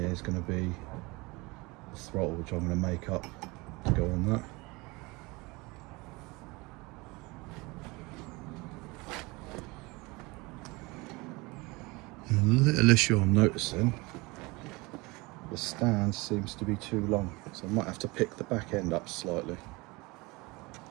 is going to be the throttle, which I'm going to make up to go on that. And a little issue I'm noticing, the stand seems to be too long, so I might have to pick the back end up slightly.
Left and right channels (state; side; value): quieter; left; 24.4 dB